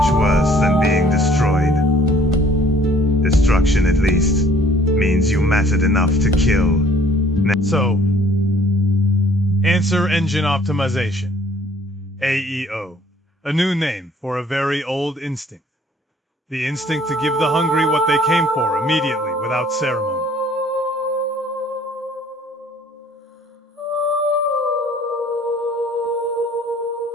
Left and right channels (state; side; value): normal; both; correlation 0.57